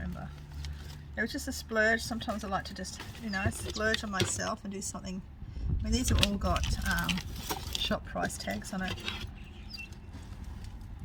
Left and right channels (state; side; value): identical; both; correlation 1.00